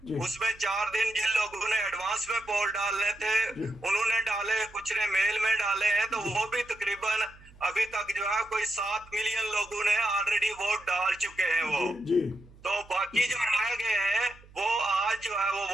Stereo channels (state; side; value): noise; right; hum, 23 dB below the sound